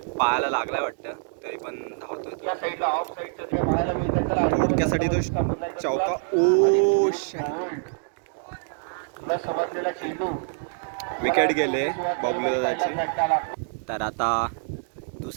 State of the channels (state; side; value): silent; left; digital silence